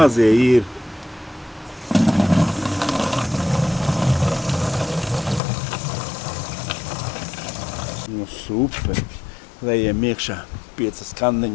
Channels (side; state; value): right; drops out; at 5.4 s